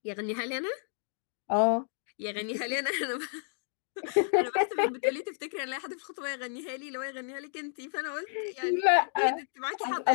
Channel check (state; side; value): silent; right; digital silence